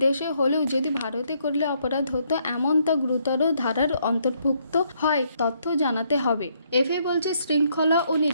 হলেও যদি ভারতে করলে অপরাধ হতো এমন তা গুরুতর ধারার অন্তর্ভুক্ত হয় তথ্য জানাতে হবে। এফএ বলছে শৃঙ্খলা ও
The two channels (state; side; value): inverted; both; correlation -0.71